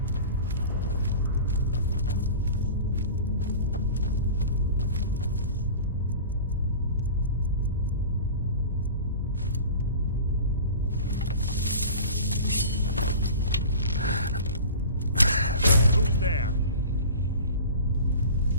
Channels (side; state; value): both; inverted; correlation -0.37